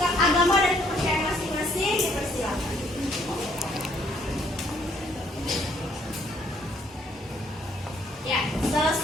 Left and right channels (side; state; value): both; normal; correlation 0.66